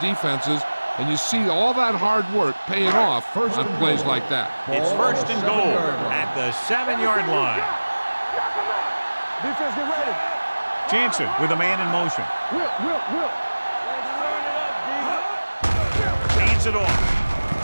and you see all that hard work paying off on plays like that. It's 1st and goal at the 7-yard line. Defense, get ready. Jansen with a man in motion. Whip. Let's turn it up, D. Hands it off.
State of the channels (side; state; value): both; inverted; correlation -1.00